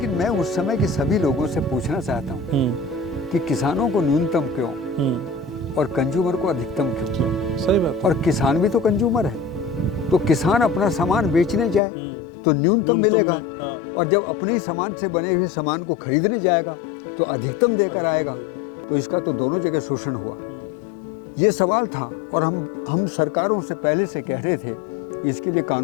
मैं उस समय के सभी लोगों से पूछना चाहता हूँ कि किसानों को न्यूनतम क्यों और कंज्यूमर को अधिकतम क्यों? सही बात। और किसान भी तो कंज्यूमर है, तो किसान अपना सामान बेचने जाए तो न्यूनतम मिलेगा, और जब अपने सामान से बने हुए सामान को खरीदने जाएगा तो अधिकतम देकर आएगा। तो इसका तो दोनों जगह शोषण हुआ। ये सवाल था, और हम सरकारों से पहले से कह रहे थे इसके लिए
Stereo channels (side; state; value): right; drops out; at 11.8 s